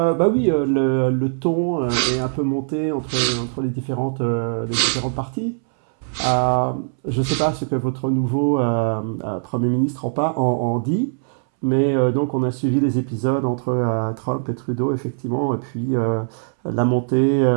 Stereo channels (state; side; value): silent; left; 64 dB below the other